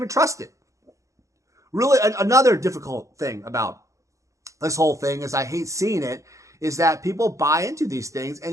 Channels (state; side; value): late; left; 0.15 ms